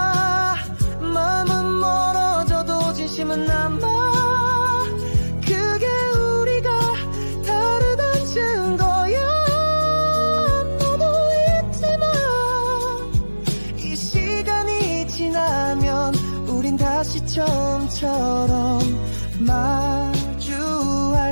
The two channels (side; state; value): both; inverted; correlation -1.00